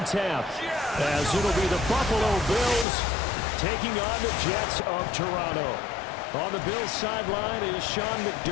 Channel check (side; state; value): right; drops out; at 2.9 s